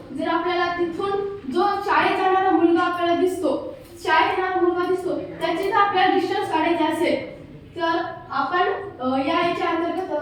जर आपल्याला तिथून जो शाळेत जाणारा मुलगा आपल्याला दिसतो त्याचे जर आपल्याला डिस्टन्स काढायचे असेल तर आपण याच्या अंतर्गत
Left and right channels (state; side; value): identical; both; correlation 1.00